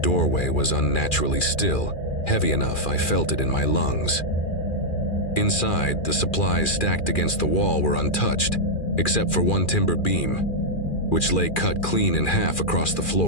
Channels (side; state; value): right; late; 2.4 ms